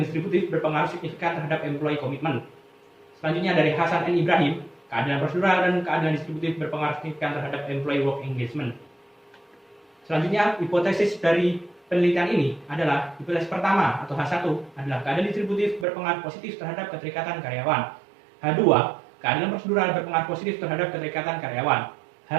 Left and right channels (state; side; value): drops out; left; at 15.9 s